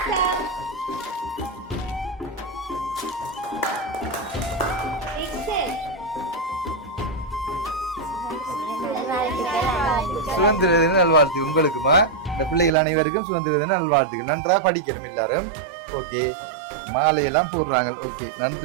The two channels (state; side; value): drops out; left; at 12.8 s